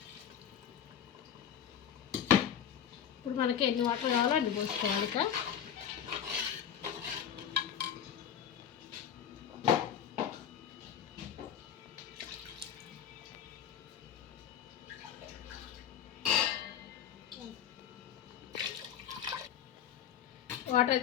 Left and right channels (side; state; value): right; quieter; 9.1 dB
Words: ఇప్పుడు మనకి ఎన్ని వాటర్ కావాలో అన్ని పోసుకోవాలి. ఇక వాటర్